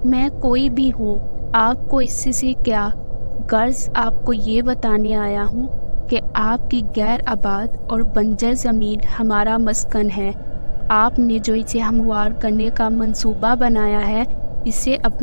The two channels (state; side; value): inverted; both; correlation -1.00